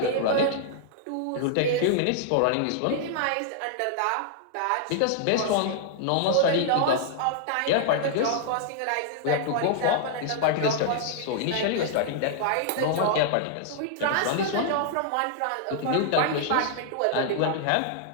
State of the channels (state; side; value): different; both; correlation -0.01